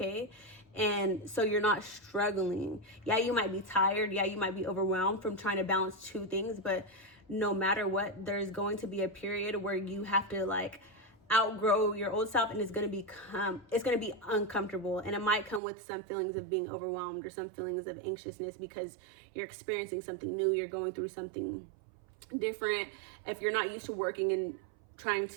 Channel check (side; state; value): left; drops out; at 15.6 s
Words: and so you're not struggling. Yeah, you might be tired. Yeah, you might be overwhelmed from trying to balance two things, but no matter what, there's going to be a period where you have to like outgrow your old self, and it's going to be uncomfortable, and it might come with some feelings of being overwhelmed or some feelings of anxiousness, because you're experiencing something new, you're going through something different. If you're not used to working and trying